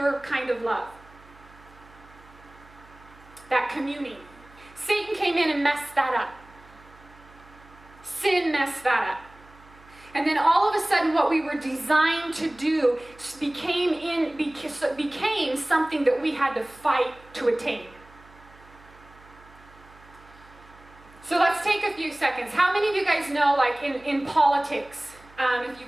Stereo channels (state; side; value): noise; right; hum, 24 dB below the sound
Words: kind of love. That communing. Satan came in and messed that up. Sin messed that up. And then all of a sudden what we were designed to do became something that we had to fight to attain. So let's take a few seconds. How many of you guys know, in politics, if